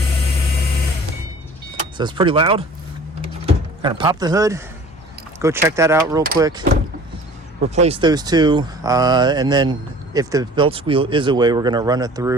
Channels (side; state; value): both; normal; correlation 0.46